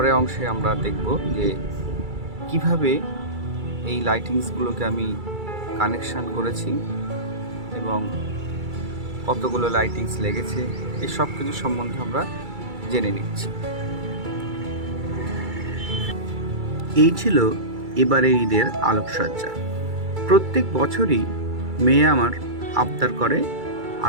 অংশে আমরা দেখব যে কিভাবে এই লাইটিংসগুলোকে আমি কানেকশান করেছি এবং কতগুলো লাইটিংস লেগেছে, এই সব কিছু সম্বন্ধে আমরা জেনে নিচ্ছি। এই ছিল এবারের ঈদের আলোকসজ্জা। প্রত্যেক বছরই মেয়ে আমার আবদার করে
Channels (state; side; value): late; left; 2.3 ms